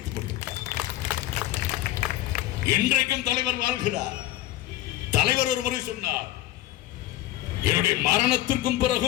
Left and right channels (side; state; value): right; quieter; 15.0 dB